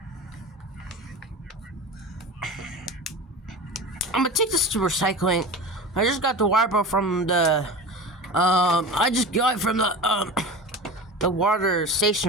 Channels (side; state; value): both; normal; correlation 0.31